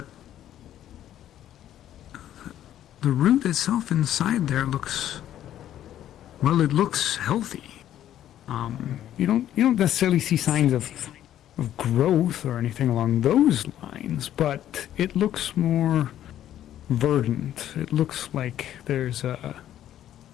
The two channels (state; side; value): quieter; right; 11.7 dB